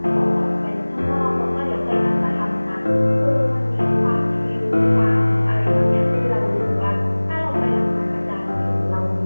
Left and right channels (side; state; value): both; inverted; correlation -1.00